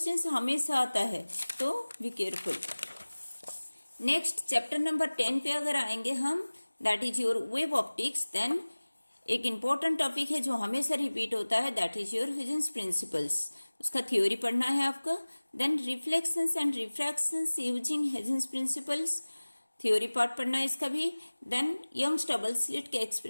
हमेशा आता है, तो be careful. Next chapter number 10 पे अगर आएंगे हम, दैट is your wave optics. Then एक इंपॉर्टेंट टॉपिक है जो हमेशा रिपीट होता है, that is your Huygens principles, उसका थ्योरी पढ़ना है आपका। Then reflections and refractions using Huygens principles, theory part पढ़ना है इसका भी। देन यंग्स डबल स्लिट के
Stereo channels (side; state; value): both; inverted; correlation -1.00